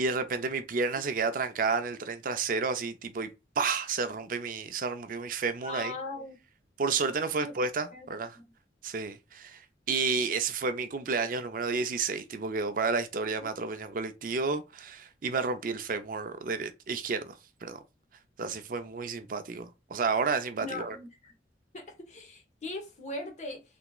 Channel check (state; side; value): quieter; left; 4.0 dB